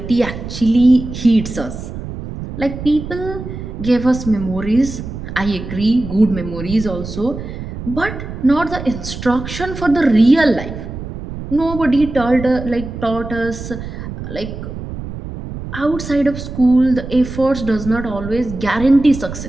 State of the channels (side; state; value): right; noise; rumble, 9 dB below the sound